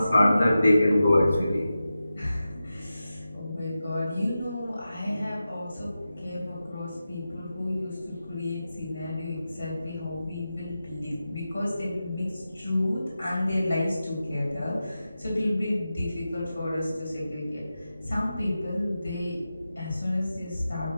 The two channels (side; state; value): both; inverted; correlation -0.92